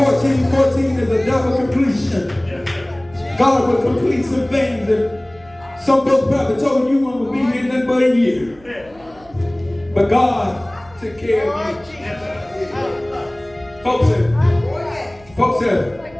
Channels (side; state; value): right; noise; hum, 26 dB below the sound